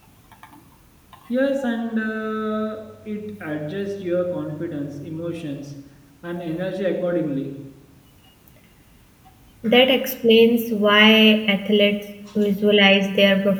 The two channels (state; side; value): identical; both; correlation 1.00